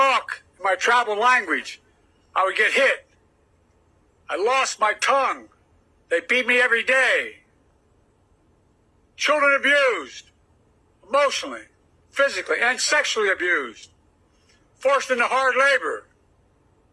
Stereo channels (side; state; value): both; identical; correlation 1.00